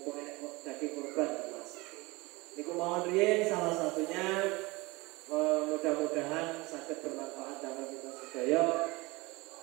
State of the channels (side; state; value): left; quieter; 23.4 dB